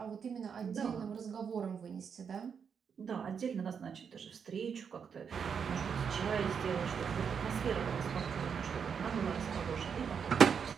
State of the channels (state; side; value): quieter; left; 6.8 dB